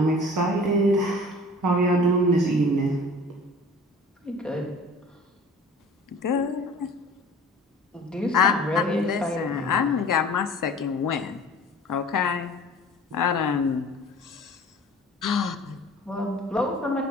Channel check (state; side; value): normal; both; correlation 0.44